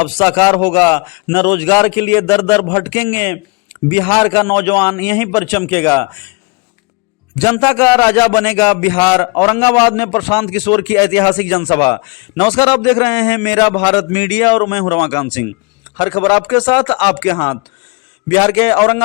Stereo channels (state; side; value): quieter; right; 30.1 dB